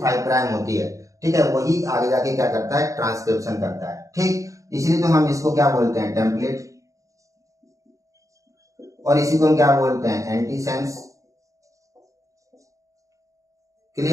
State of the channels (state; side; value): late; left; 0.16 ms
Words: प्राइम होती है, ठीक है, वही आगे जाके क्या करता है, ट्रांसक्रिप्शन करता है। ठीक, इसलिए तो हम इसको क्या बोलते हैं, टेम्पलेट, और इसी को हम क्या बोलते हैं, एंटीसेंस।